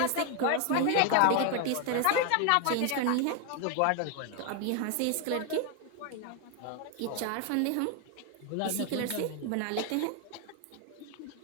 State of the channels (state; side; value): different; both; correlation 0.01